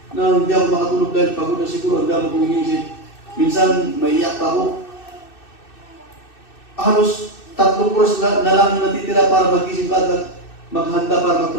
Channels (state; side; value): late; right; 2.6 ms